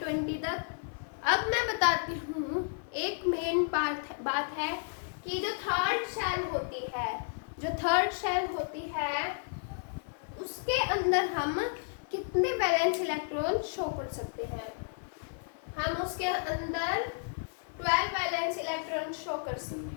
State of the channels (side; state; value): right; silent; 56 dB below the other